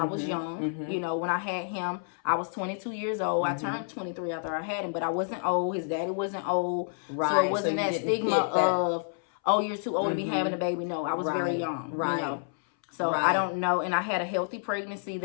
was young. You know, when I had him, I was 22 years old. I turned 23 after I had him, but I wasn't old. His daddy wasn't old. Right. So it wasn't that stigma of, oh, you're too old to be having a baby. No, I was very young. Right. You know. So I don't know. And I had a healthy pregnancy.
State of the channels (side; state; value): right; silent; 59 dB below the other